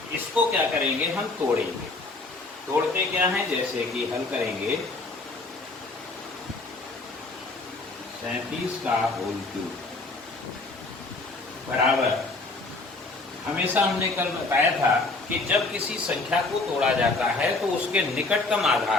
इसको क्या करेंगे हम तोड़ेंगे। तोड़ते क्या है, जैसे कि हल करेंगे 37 का होल क्यूब बराबर, हमेशा हमने कल बताया था कि जब किसी संख्या को तोड़ा जाता है तो उसके निकटतम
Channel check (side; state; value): right; quieter; 3.4 dB